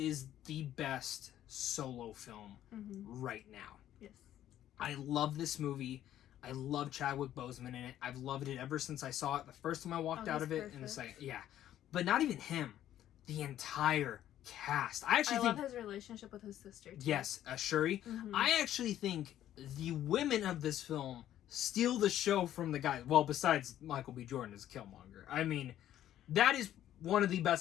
the best solo film right now. Yes. I love this movie. I love Chadwick Boseman in it. I've loved it ever since I saw it. The first time I walked out of it, perfect. and it's like, yeah. But not even him. The entire cast. I actually think... love his relationship with his sister, too. Yes, Shuri. I actually think the women of this film steal the show from the guys. Well, besides Michael B. Jordan as Killmonger. I mean, that is one of the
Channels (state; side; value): quieter; right; 12.0 dB